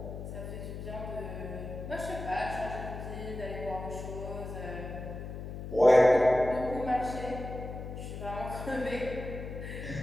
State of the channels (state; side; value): noise; left; hum, 8 dB below the sound